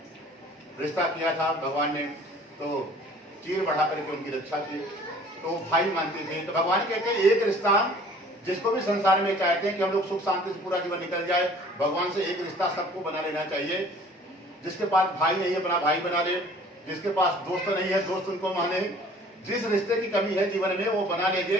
रिश्ता किया था भगवान ने, तो चीर बढ़ा करके उनकी रक्षा की, तो भाई मानते थे। तो भगवान कहते हैं एक रिश्ता जिसको भी संसार में चाहते हैं कि हम लोग सुख शांति से पूरा जीवन निकल जाए, भगवान से एक रिश्ता सबको बना लेना चाहिए। जिसके पास भाई नहीं है अपना भाई बना ले, जिसके पास दोस्त नहीं है दोस्त उनको माने। जिस रिश्ते की कमी है जीवन में वो बना लेंगे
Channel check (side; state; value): both; normal; correlation 0.51